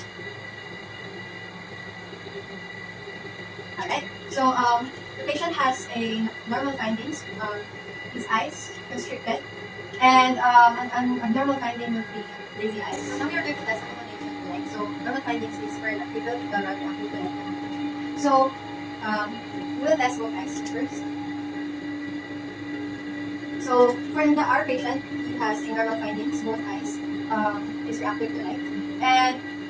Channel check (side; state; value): both; identical; correlation 1.00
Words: Alright. So the patient has a normal findings. His eyes constricted, and an abnormal finding would be lazy eyes. So now we are going to test accommodation, right? So normal findings is for electrical, electrical. So we will test both eyes first. So for our patient, he has a normal findings, both eyes is reactive to light. And